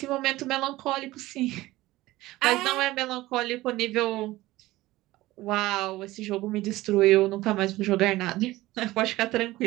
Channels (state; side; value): quieter; left; 17.9 dB